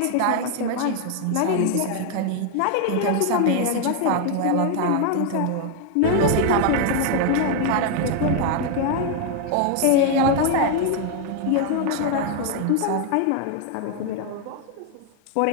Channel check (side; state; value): both; different; correlation 0.00